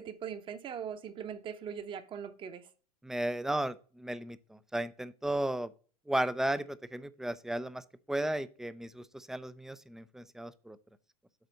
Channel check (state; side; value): normal; both; correlation 0.92